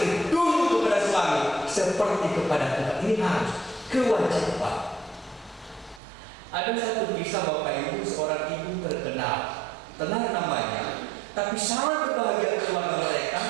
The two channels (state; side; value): drops out; left; at 6.0 s